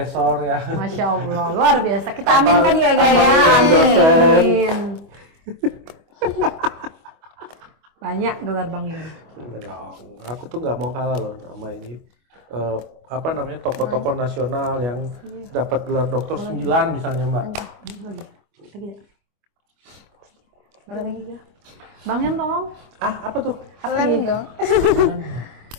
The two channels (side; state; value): left; late; 25 ms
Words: ya. Masya Allah, luar biasa. Kita aminkan ya guys. Dosen. Amin. Banyak gelar Bang Yon. Enggak dong. Aku tuh nggak mau kalah loh nama ini. Apa namanya, tokoh-tokoh nasional yang dapat gelar dokter 9 misalnya Mbak. Lagi. Bang Yon tolong. Apa tuh? Lem dong.